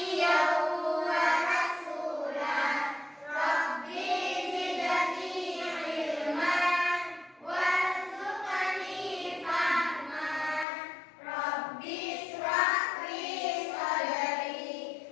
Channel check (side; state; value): right; drops out; at 10.7 s